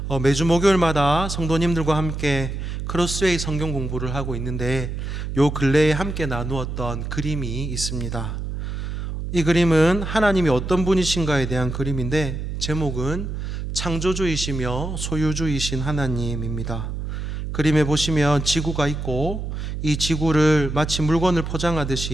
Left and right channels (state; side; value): noise; right; hum, 5 dB below the sound